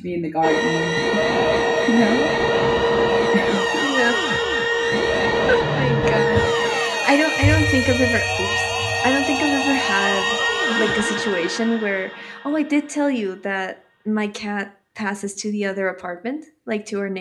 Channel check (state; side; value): identical; both; correlation 1.00